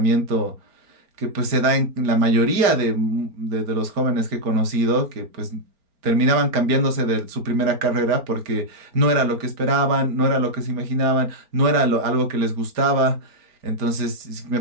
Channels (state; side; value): late; left; 4.4 ms